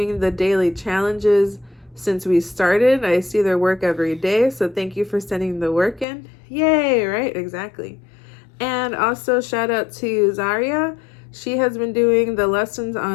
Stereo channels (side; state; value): right; drops out; at 6.1 s